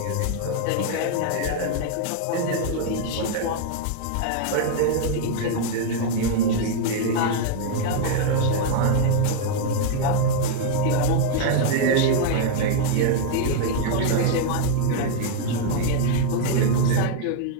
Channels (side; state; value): both; different; correlation 0.00